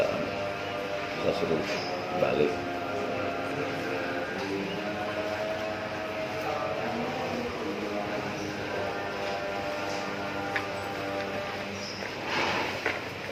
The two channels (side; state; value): both; identical; correlation 1.00